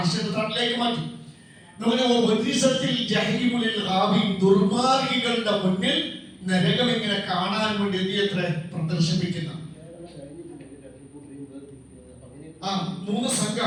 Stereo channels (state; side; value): identical; both; correlation 1.00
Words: തണലിലേക്ക് മാറ്റി. ദുർമാർഗികളുടെ മുന്നിൽ നരകം ഇങ്ങനെ കാണാൻ വേണ്ടി എത്ര പ്രദർശിപ്പിക്കുന്ന 3